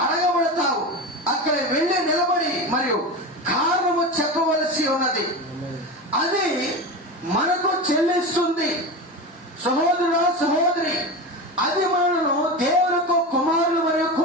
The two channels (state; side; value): normal; both; correlation 0.24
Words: అడగబడతావు, అక్కడ వెళ్ళి నిలబడి మరియు కారణము చెప్పవలసి ఉన్నది. అది మనకు చెల్లిస్తుంది. సహోదరుడా, సహోదరి, అది మనను దేవులకు కుమారులు మరియు